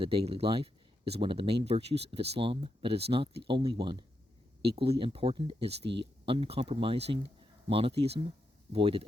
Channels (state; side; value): normal; both; correlation 0.84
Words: daily life is one of the main virtues of Islam, but it is not the only one. Equally important is the uncompromising monotheism, void of